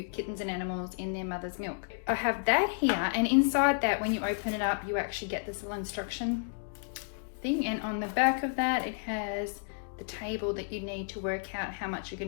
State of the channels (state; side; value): silent; right; digital silence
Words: kittens and animals in their mother's milk. I have that here, and inside that, when you open it up, you actually get this little instruction thing, and on the back of that it has the table that you need to work out how much you're